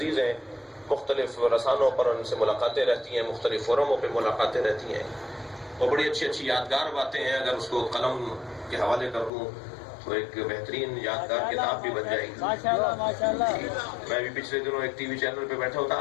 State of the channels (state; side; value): drops out; right; at 9.3 s